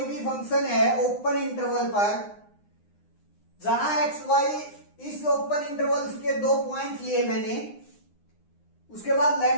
भी फंक्शन है ओपन इंटरवल पर, जहां x y इस ओपन इंटरवल के दो पॉइंट लिए मैंने, उसके बाद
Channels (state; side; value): late; right; 9.7 ms